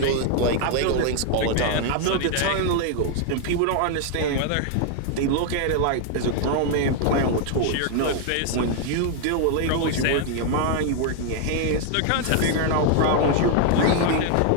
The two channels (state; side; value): different; both; correlation 0.00